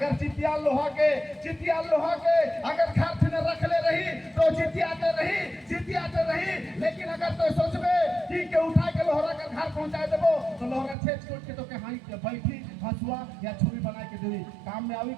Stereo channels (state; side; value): drops out; left; at 11.0 s